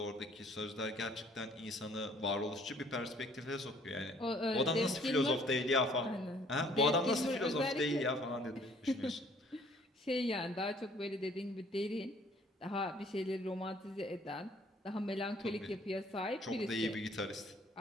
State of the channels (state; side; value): normal; both; correlation 0.58